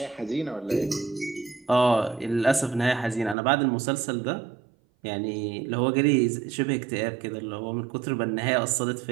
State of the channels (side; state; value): left; drops out; at 3.4 s